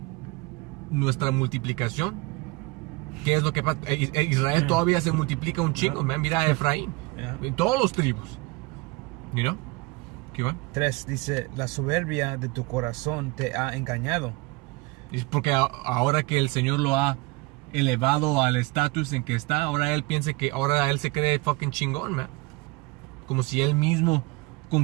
nuestra multiplicación, ¿qué es lo que pasa? Israel todavía se multiplica un chingo. Mira a Efraín, en todos los tribus. ¿Qué va? 3 dice, la soberbia de tu corazón te ha engañado. Es porque ahora que el Señor lo ha elevado al estatus en que está, ahora él piensa que ahora él se cree fucking chingón, man. Como si él mismo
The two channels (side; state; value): left; quieter; 24.9 dB